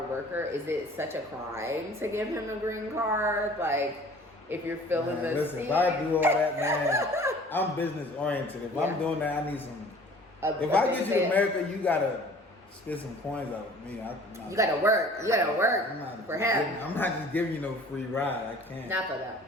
worker, is it such a crime to give him a green card? Like, if you're feeling the listen, scene. if I do all that, man, I'm business oriented. If I'm doing that, I need some. If I get you to America, you gotta spit some coins out of me. You gotta work. You gotta work for him. I'm not just giving you no free ride. I can't. Not for that.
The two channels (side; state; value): both; normal; correlation 0.49